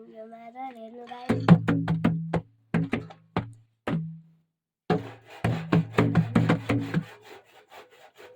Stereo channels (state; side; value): identical; both; correlation 1.00